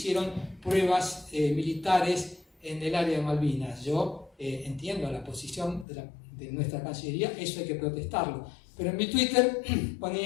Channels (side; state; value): right; drops out; at 5.9 s